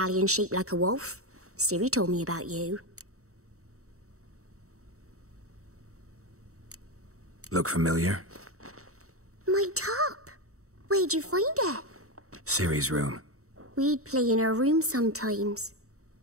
shaped like a wolf. Ciri told me about you. Look familiar? My top. Where'd you find it? Ciri's room. We'd play in her room sometimes.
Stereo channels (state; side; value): late; left; 0.64 ms